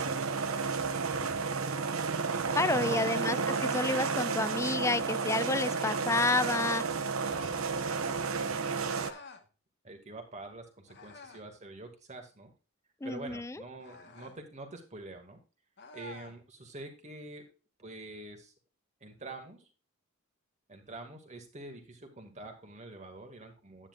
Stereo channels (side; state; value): both; normal; correlation 0.03